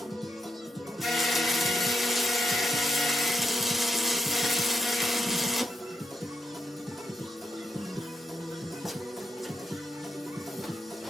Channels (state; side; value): normal; both; correlation 0.78